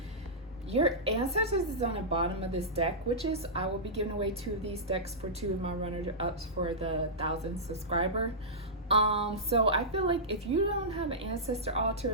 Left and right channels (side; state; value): both; normal; correlation -0.14